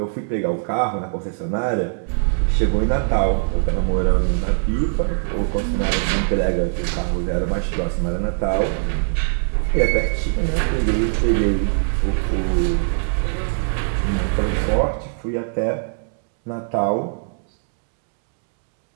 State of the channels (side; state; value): left; silent; digital silence